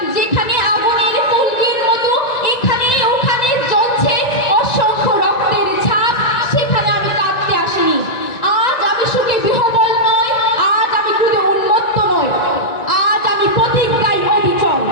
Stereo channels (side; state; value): right; late; 1.9 ms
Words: যেখানে আগুনের ফুলকির মতো এখানে ওখানে জ্বলছে অসংখ্য রক্তের ছাপ, সেখানে আমি কাঁদতে আসিনি। আজ আমি সুখে বিহবল নয়, আজ আমি ক্রোধে উন্মত্ত নয়, আজ আমি প্রতিজ্ঞায় অবিচল।